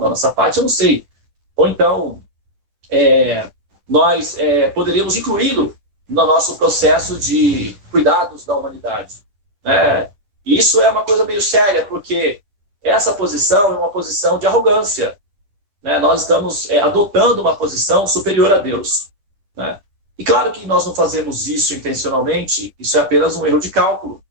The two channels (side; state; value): left; late; 10 ms